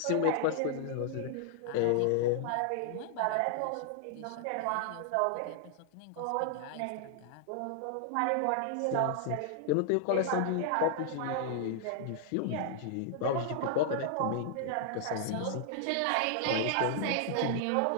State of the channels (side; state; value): both; different; correlation 0.00